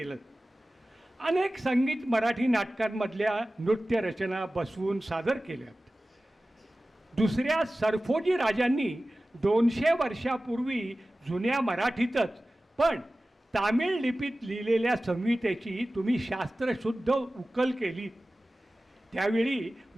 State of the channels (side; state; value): both; normal; correlation 0.96